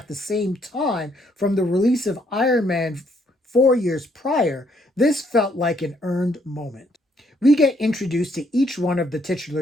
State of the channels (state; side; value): normal; both; correlation 0.70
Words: the same time, from the release of Iron Man 4 years prior, this felt like an earned moment. We get introduced to each one of the